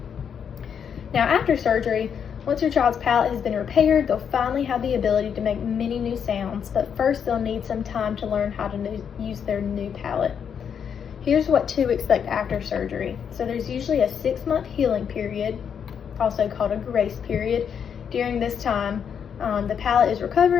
Now, after surgery, once your child's palate has been repaired, they'll finally have the ability to make many new sounds, but first they'll need some time to learn how to use their new palate. Here's what to expect after surgery. So there's usually a 6-month healing period, also called a grace period. During this time, the palate is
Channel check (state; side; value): quieter; right; 7.6 dB